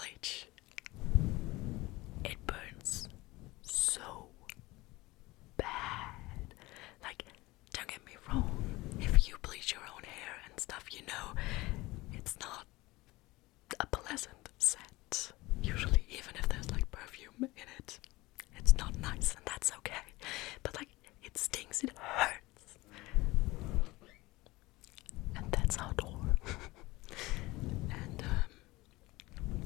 it burns so bad. Like, don't get me wrong, if you bleach your own hair and stuff, it's not a pleasant scent. Usually, even if there's like perfume in it, it's not nice, and that's okay. But like, it stings, it hurts. And that's outdoor. And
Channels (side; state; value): right; quieter; 20.6 dB